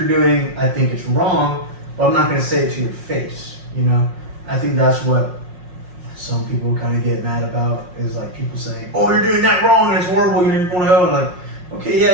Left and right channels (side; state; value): left; late; 5.6 ms